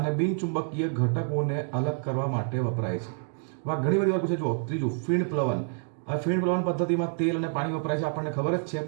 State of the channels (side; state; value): left; silent; 59 dB below the other